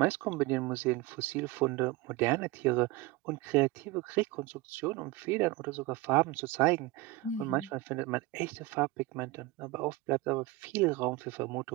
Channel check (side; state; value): left; quieter; 18.8 dB